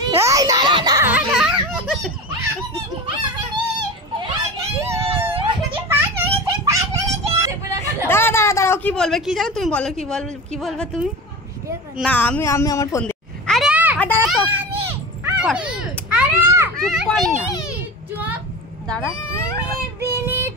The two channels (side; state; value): both; normal; correlation 0.29